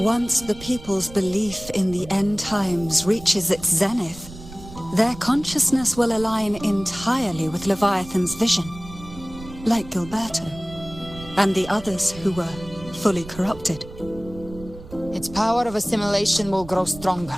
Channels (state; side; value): noise; right; rumble, 16 dB below the sound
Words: the people's belief in the end times reaches its zenith, their consciousness will align entirely with Leviathan's vision, like Gilberto, and the others who were fully corrupted. Its power of assimilation will grow